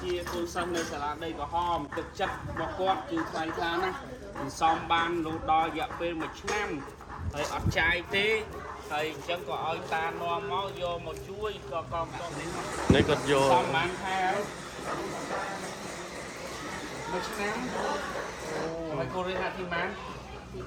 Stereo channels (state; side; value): identical; both; correlation 1.00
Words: ជាកូនសិស្សនៅសាលាដីក្រហមទឹកចិត្តរបស់គាត់គឺថ្លៃថ្លាណាស់សំបានរហូតដល់រយៈពេល1ឆ្នាំហើយអត់ចាយទេហើយអញ្ចឹងក៏ឲ្យតានាំមកយកមកជួយក៏កងតនេះគាត់យកសំបានខែ1ឆ្នាំហើយគូរៀនទីម៉ាន